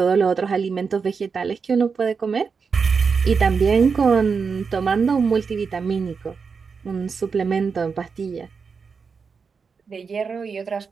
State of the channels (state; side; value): quieter; left; 5.4 dB